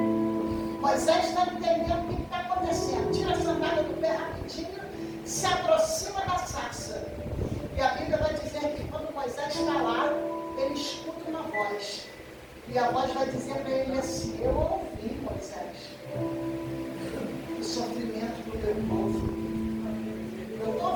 Moisés está entendendo o que está acontecendo. Tira a sandália do pé rapidinho, se aproxima da sarça. E a Bíblia vai dizer que quando Moisés está lá, ele escuta uma voz. E a voz vai dizer para ele assim: eu ouvi, Moisés, o sofrimento do meu povo. Eu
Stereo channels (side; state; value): both; identical; correlation 1.00